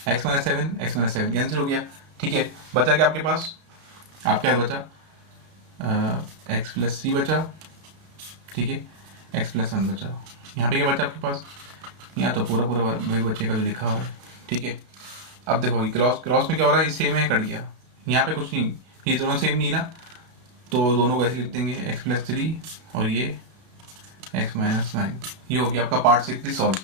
x - 7 कैंसिल हो गया, ठीक है। बचा क्या आपके पास, आपके पास बचा x + 3 बचा, ठीक है, x + 1 बचा। यहाँ पे क्या बचा आपके पास, यहाँ तो पूरा वही बच्चे का जो लिखा हुआ है, ठीक है। अब देखो क्रॉस में क्या हो रहा है, ये सेम है, कट गया, यहाँ पे कुछ नहीं, ये दोनों सेम नहीं ना, तो दोनों को ऐसे लिख देंगे, x + 3 और ये x - 9। ये हो गया आपका पार्ट 6 सॉल्व।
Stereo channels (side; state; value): left; late; 33 ms